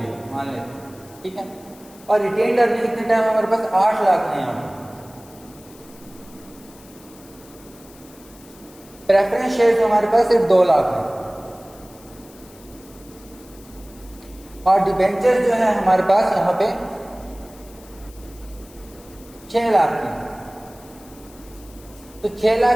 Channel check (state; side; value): noise; left; hiss, 23 dB below the sound